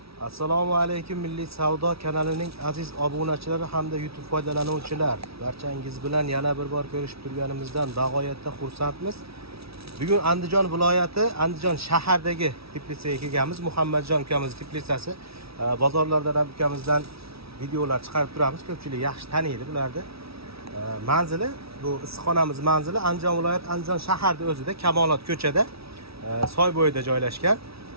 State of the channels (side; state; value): left; late; 0.76 ms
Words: Assalomu alaykum Milliy savdo kanalining aziz obunachilari hamda YouTube foydalanuvchilar. Barchangiz bilan yana bir bor ko'rishib turganimizdan bag'oyatda xursandmiz. Bugun Andijon viloyati, Andijon shahardagi Teplitsaga kelganmiz. Muhammadjon ukamiz Teplitsasi. Bozorlardan ham ukamizdan videolar chiqarib turamiz. Ko'pchilik yaxshi taniydi bularni. Manzili, bu issiqxonamiz manzili Andijon viloyati, Andijon shaharda o'zida, Kamolot ko'chada, soy bo'yida joylashgan.